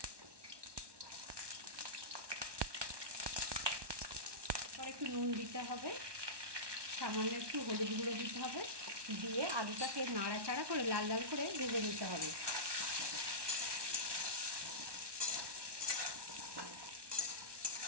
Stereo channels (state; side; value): late; left; 1.2 ms